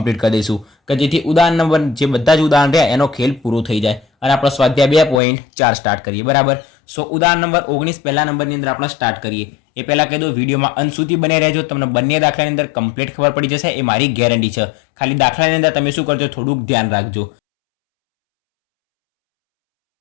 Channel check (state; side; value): drops out; right; at 5.2 s